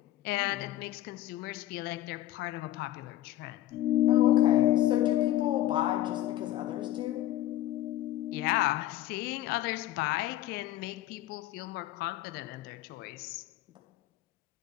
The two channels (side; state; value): right; quieter; 14.0 dB